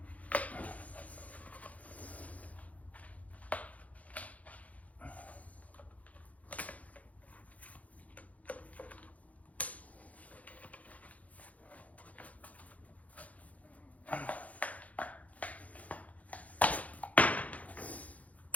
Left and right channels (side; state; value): right; late; 0.070 ms